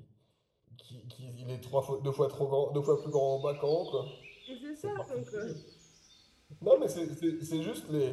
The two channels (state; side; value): identical; both; correlation 1.00